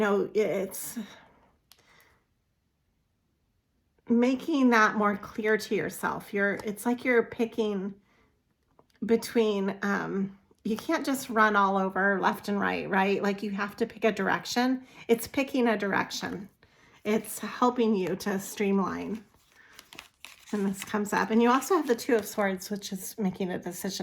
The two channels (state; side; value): identical; both; correlation 1.00